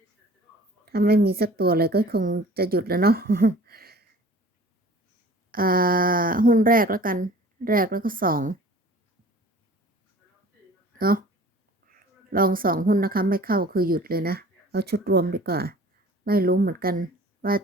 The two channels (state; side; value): normal; both; correlation 0.46